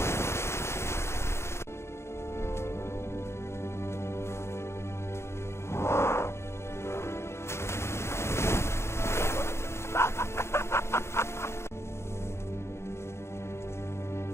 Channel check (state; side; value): late; right; 0.13 ms